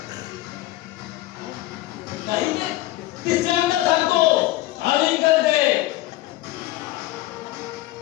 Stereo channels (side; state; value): right; quieter; 16.8 dB